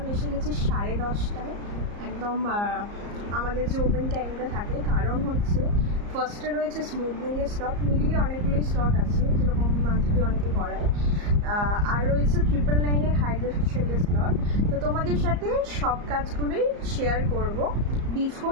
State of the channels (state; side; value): late; left; 34 ms